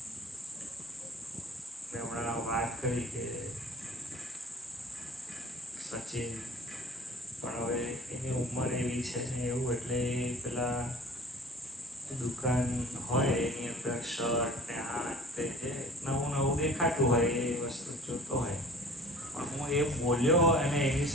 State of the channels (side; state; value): both; normal; correlation 0.47